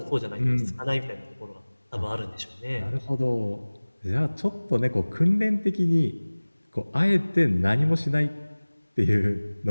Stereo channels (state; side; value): inverted; both; correlation -1.00